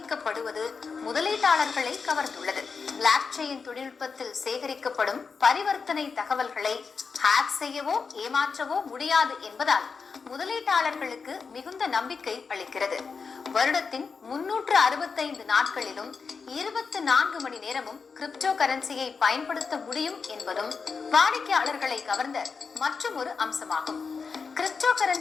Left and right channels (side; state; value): right; quieter; 5.2 dB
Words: முதலீட்டாளர்களை கவர்ந்துள்ளது. பிளாக் செயின் தொழில்நுட்பத்தில் சேகரிக்கப்படும் பரிவர்த்தனை தகவல்களை ஹேக் செய்யவோ ஏமாற்றவோ முடியாது என்பதால் முதலீட்டாளர்களுக்கு மிகுந்த நம்பிக்கை அளிக்கிறது. வருடத்தின் 365 நாட்களிலும் 24 மணி நேரமும் கிரிப்டோ கரன்சியை பயன்படுத்த முடியும் என்பதும் வாடிக்கையாளர்களை கவர்ந்த மற்றும் ஒரு அம்சமாகும். கிரிப்டோ